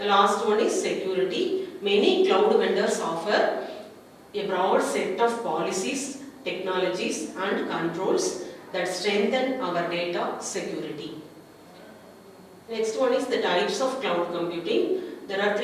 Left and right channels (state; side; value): identical; both; correlation 1.00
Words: last one is security. Many cloud vendors offer a broad set of policies, technologies and controls that strengthen our data security. Next one is the types of cloud computing. There are